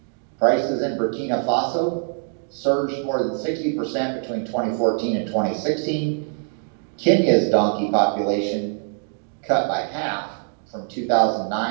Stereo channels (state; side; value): silent; left; 56 dB below the other